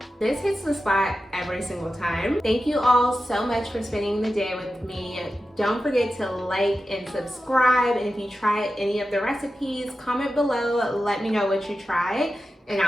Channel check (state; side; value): normal; both; correlation 0.92